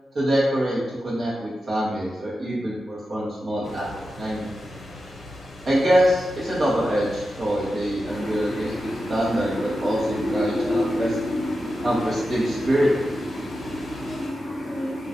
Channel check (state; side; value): normal; both; correlation 0.91